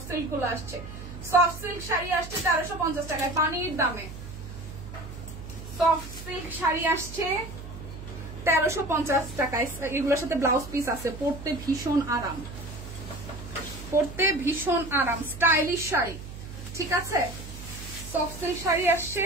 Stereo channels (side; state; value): right; noise; hum, 12 dB below the sound